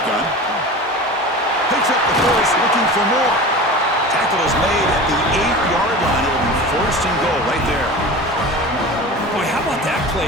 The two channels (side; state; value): both; normal; correlation 0.33